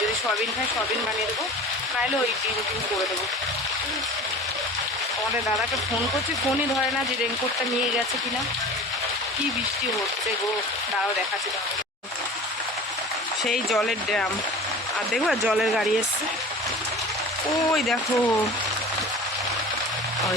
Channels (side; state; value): both; normal; correlation 0.38